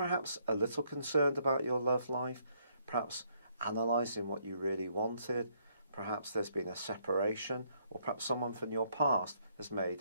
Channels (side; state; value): both; inverted; correlation -0.70